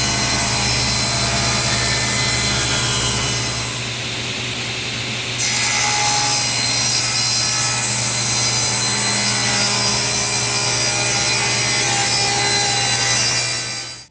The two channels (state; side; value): identical; both; correlation 1.00